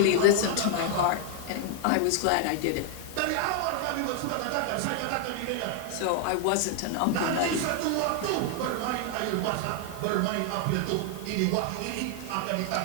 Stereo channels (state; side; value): different; both; correlation 0.00